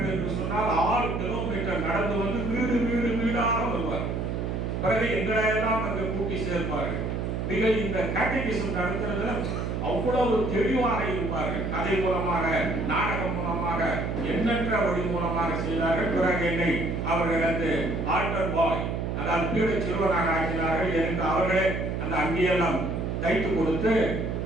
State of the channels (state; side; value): noise; right; hum, 2 dB below the sound